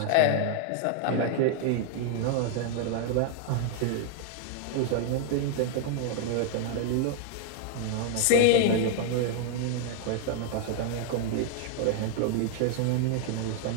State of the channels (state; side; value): different; both; correlation 0.00